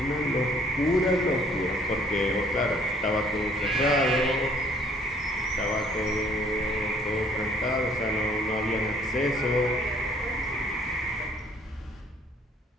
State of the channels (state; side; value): normal; both; correlation 0.60